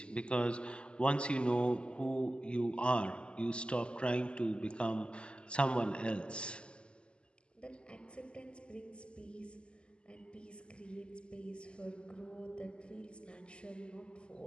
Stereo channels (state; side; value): late; right; 0.052 ms